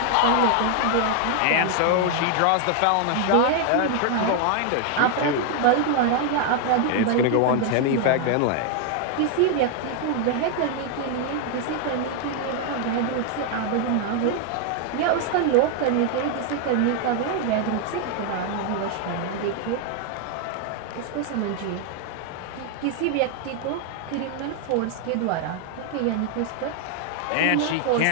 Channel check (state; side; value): different; both; correlation 0.00